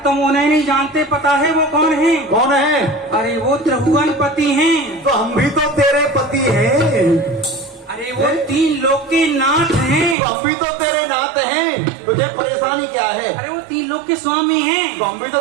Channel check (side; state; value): left; drops out; at 10.2 s